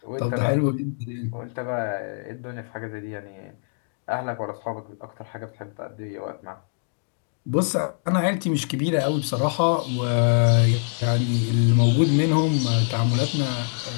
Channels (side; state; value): right; silent; digital silence